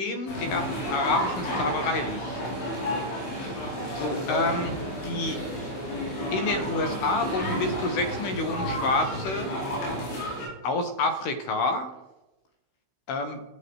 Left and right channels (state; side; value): late; right; 16 ms